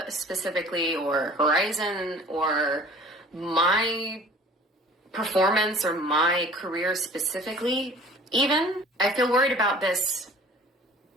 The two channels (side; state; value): both; normal; correlation 0.47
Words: specifically or Horizon or my performance or my career specifically even. I feel worried about this